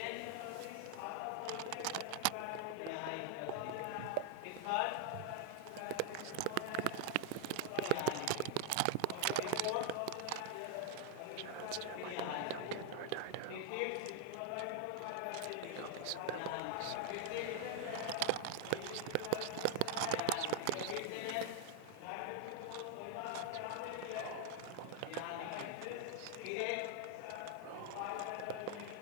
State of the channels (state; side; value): different; both; correlation 0.00